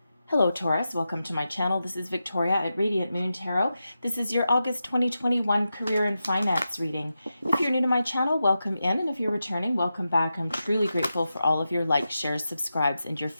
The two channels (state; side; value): inverted; both; correlation -0.90